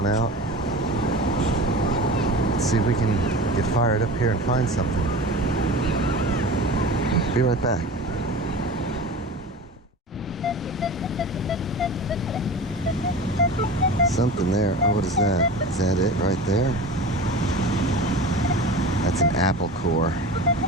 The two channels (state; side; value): normal; both; correlation 0.33